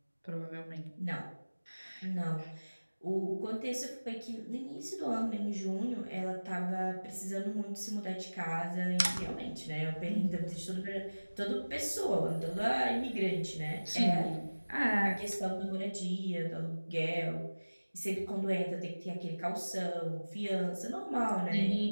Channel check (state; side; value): inverted; both; correlation -1.00